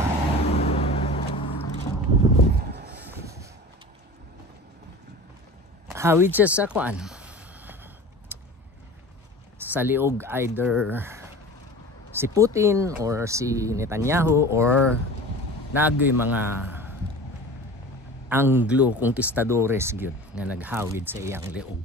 hawid siya sa sa liog, either si Putin or si Netanyahu or nagoy mga Anglo conquistadores gyud nga naghawid sa iyang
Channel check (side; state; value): both; normal; correlation 0.37